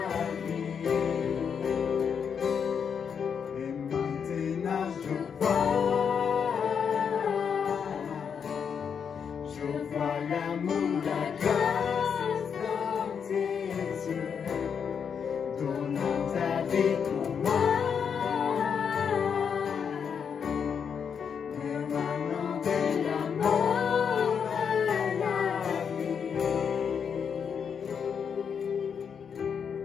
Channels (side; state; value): right; quieter; 7.0 dB